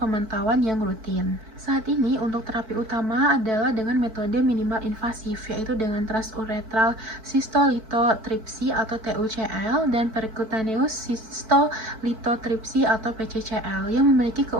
yang rutin. Saat ini, untuk terapi utama adalah dengan metode minimal invasif, yaitu dengan transuretral cystolithotripsy atau TUCL dan percutaneous cystolithotripsy atau PCCL yang memiliki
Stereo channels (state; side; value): late; left; 4.5 ms